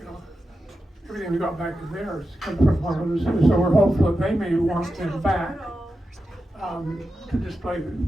everything we got back in there is come from one of the zoos. So we're hopeful that they may want them back to display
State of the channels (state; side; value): normal; both; correlation 0.90